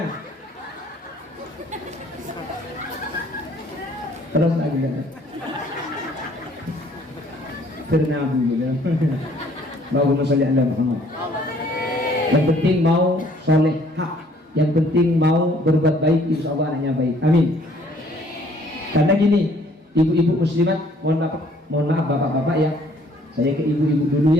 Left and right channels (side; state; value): both; normal; correlation 0.60